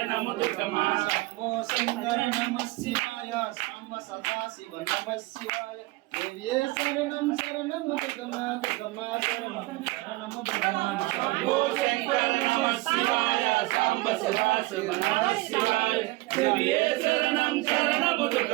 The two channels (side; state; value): left; quieter; 21.1 dB